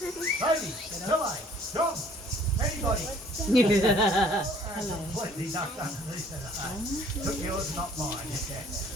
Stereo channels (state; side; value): normal; both; correlation 0.56